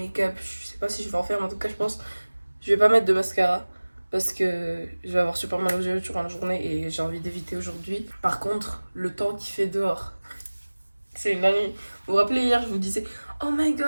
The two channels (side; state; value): both; inverted; correlation -1.00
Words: je sais pas si je vais en faire, mais en tout cas je pense je vais pas mettre de mascara. Parce que je vais avoir super mal aux yeux durant la journée et j'ai envie d'éviter aujourd'hui. Par contre, le temps qu'il fait dehors, c'est une dinguerie. Vous vous rappelez hier, je vous disais oh my